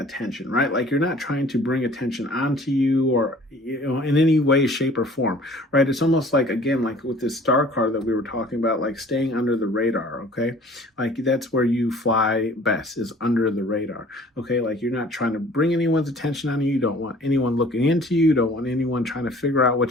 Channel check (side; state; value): both; normal; correlation 0.50